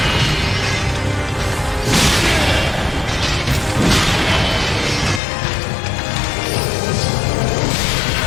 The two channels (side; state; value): right; drops out; at 5.2 s